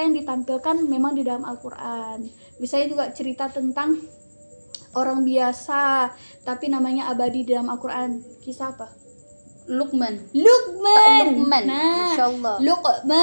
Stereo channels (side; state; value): both; inverted; correlation -1.00